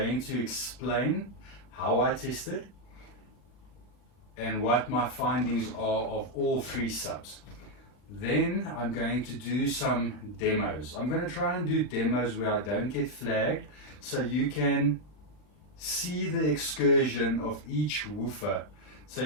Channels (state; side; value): late; right; 40 ms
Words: to explain how I tested and what my findings are of all three subs. Then I'm going to do some demos. I'm going to try and do demos where I don't get flagged, so you can see the excursion of each woofer, so